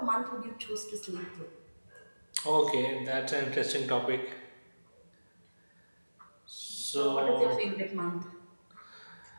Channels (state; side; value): inverted; both; correlation -1.00